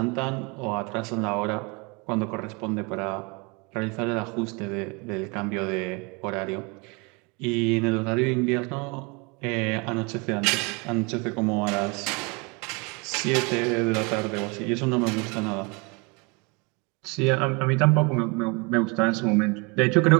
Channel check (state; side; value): quieter; left; 29.7 dB